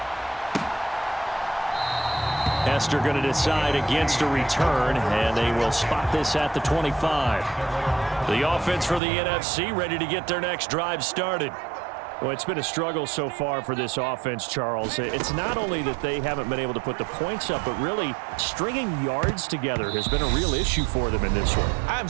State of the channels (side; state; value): left; drops out; at 9.0 s